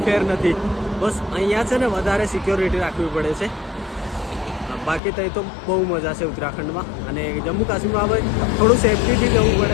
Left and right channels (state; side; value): drops out; right; at 5.0 s